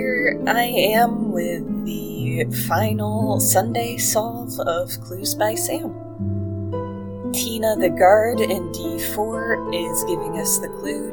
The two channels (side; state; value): both; identical; correlation 1.00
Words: I am with the final Sunday solve of Clues by Sam. Tina the guard in D4 is giving us the clue